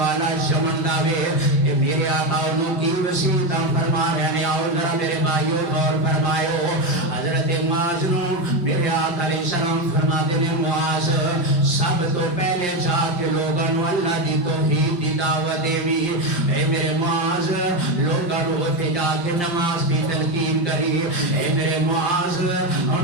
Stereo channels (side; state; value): right; late; 5.7 ms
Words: یمن دا وے. اے میرے آقا انہوں کی وسیعتاں فرما رہے نے. آؤ ذرا میرے بھائیو غور فرمائیو. حضرت معاذ نو میرے آقا علیہ السلام فرما دے نے معاذ سب تو پہلے جا کے لوگاں نو اللہ دی توحید دی دعوت دیوی. اے میرے معاذ لوگاں نو اوتھے جا کے نماز دی تلقین کری. اے میرے معاذ